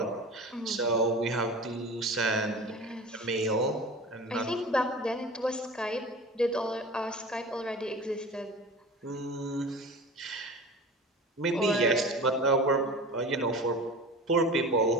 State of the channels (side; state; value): both; normal; correlation 0.35